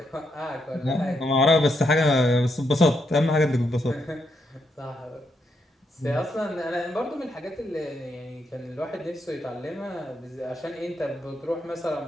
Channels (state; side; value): normal; both; correlation 0.79